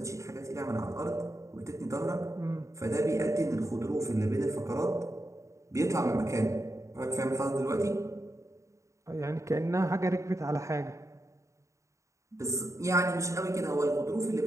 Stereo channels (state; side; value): late; left; 0.15 ms